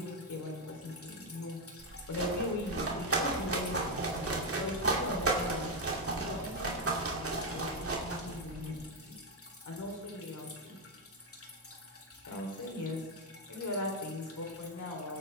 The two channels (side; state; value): both; normal; correlation 0.05